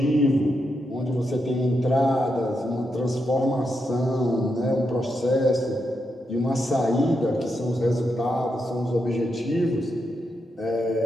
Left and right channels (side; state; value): both; normal; correlation 0.84